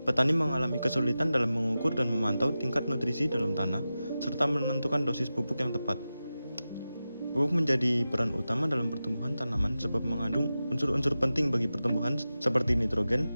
petani mengalami kesulitan dalam mengukur dan memantau tingkat nutrisi dalam tanah, serta menentukan dosis pupuk yang tepat. Pupuk menjadi peran utama dalam pertumbuhan tanaman sebab mengandung unsur-unsur penting bagi pertumbuhan seperti nitrogen,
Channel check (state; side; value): inverted; both; correlation -0.93